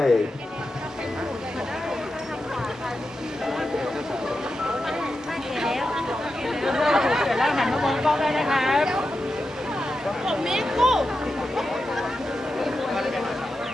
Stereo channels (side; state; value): both; normal; correlation 0.89